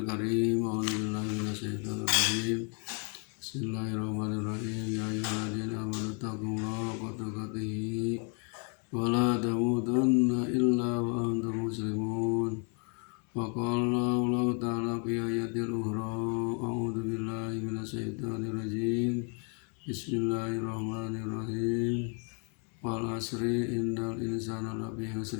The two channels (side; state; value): right; quieter; 39.8 dB